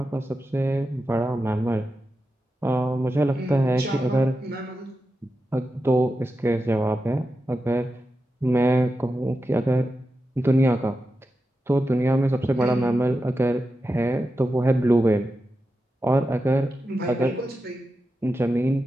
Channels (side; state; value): both; normal; correlation 0.90